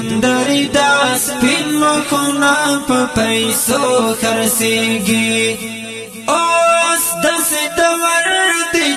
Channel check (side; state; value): both; identical; correlation 1.00